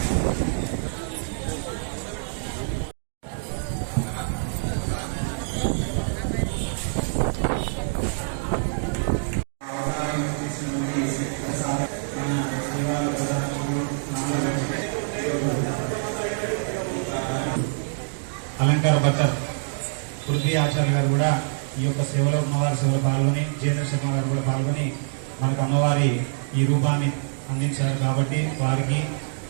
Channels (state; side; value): silent; left; digital silence